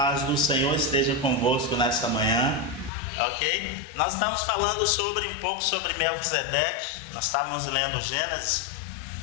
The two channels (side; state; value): right; drops out; at 2.9 s